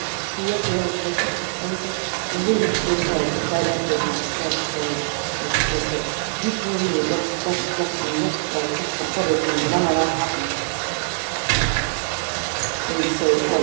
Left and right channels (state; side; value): silent; left; 64 dB below the other